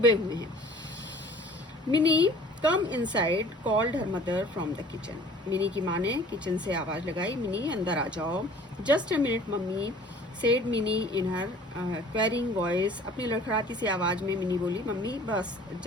हुए हैं। Mini come inside called her mother from the kitchen, mini की माँ ने किचन से आवाज लगाई, मिनी अंदर आ जाओ। Just a minute mummy said mini in her quarrying voice, अपनी लड़खड़ाती सी आवाज में मिनी बोली, मम्मी बस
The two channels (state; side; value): normal; both; correlation 0.49